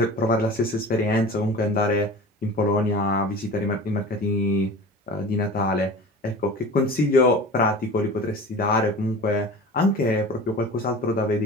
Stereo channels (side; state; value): both; normal; correlation 0.37